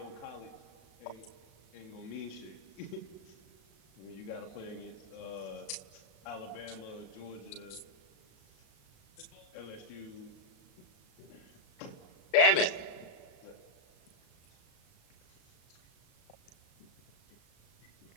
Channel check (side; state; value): right; late; 37 ms